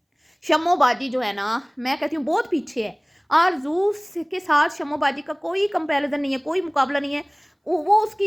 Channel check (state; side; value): identical; both; correlation 1.00